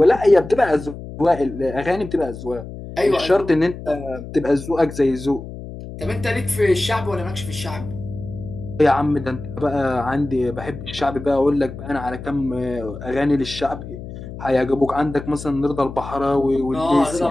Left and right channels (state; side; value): noise; left; hum, 11 dB below the sound